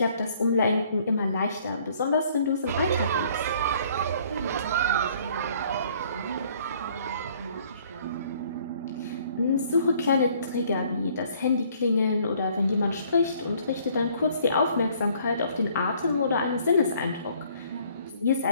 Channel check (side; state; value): both; inverted; correlation -0.60